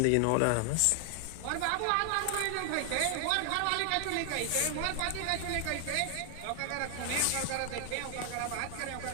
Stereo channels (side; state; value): both; different; correlation 0.00